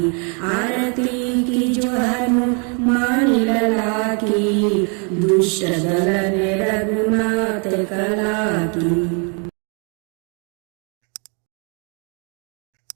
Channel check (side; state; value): left; quieter; 37.3 dB